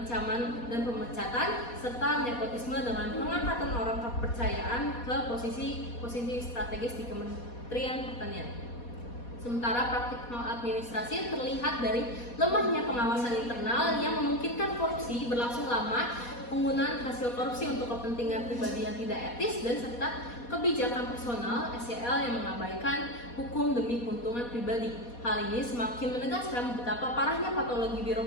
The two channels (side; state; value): right; late; 4.2 ms